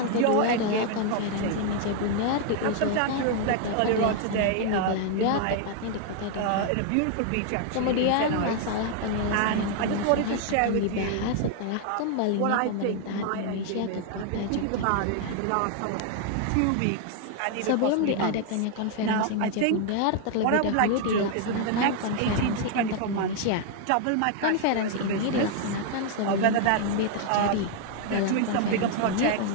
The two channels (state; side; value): different; both; correlation 0.00